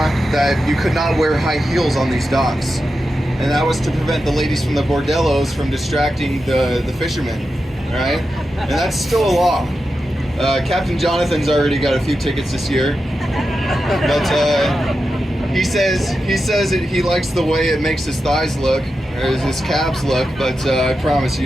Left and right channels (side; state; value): both; normal; correlation 0.90